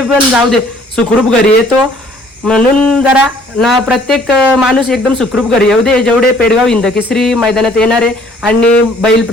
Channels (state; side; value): normal; both; correlation 0.59